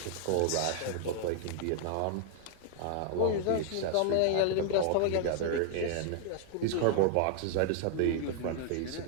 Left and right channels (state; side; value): different; both; correlation 0.00